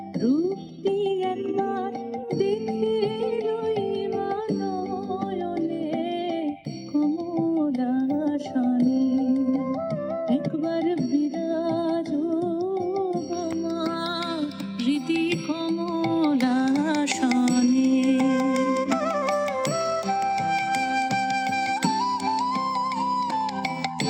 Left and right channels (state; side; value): identical; both; correlation 1.00